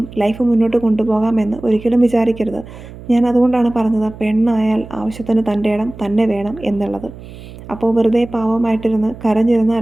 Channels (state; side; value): noise; right; hum, 16 dB below the sound